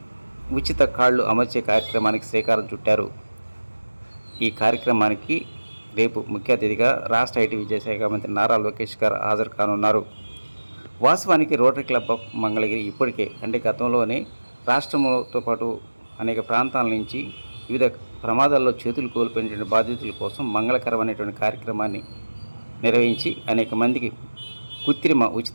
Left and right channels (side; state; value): both; inverted; correlation -1.00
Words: ఉచిత కాళ్ళు అమర్చే కార్యక్రమానికి శ్రీకారం చుట్టారు. ఈ కార్యక్రమానికి రేపు ముఖ్య అతిథిగా రాష్ట్ర ఐటీ విద్యాశాఖ మంత్రి నారా లోకేష్ గారు హాజరు కానున్నారు. వాస్తవానికి రోటరీ క్లబ్ ఆఫ్ మంగళగిరి ఇప్పటికే గతంలోనే రాష్ట్రంతో పాటు అనేక ప్రాంతాల నుంచి వివిధ ప్రమాదాల్లో చేతులు కోల్పోయినటువంటి బాధితుల కోసం మంగళకరమైనటువంటి కార్యక్రమాన్ని నిర్వహించి అనేక మందికి కృత్రిమ